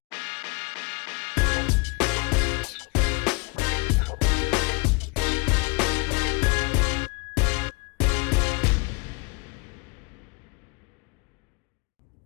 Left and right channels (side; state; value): right; quieter; 30.5 dB